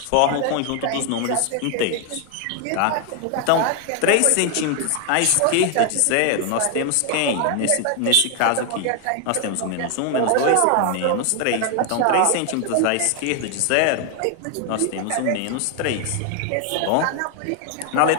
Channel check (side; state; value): both; different; correlation 0.00